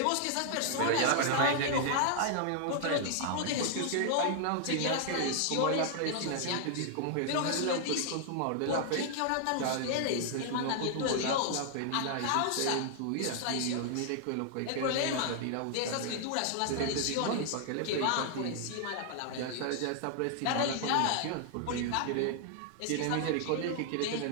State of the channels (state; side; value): different; both; correlation 0.00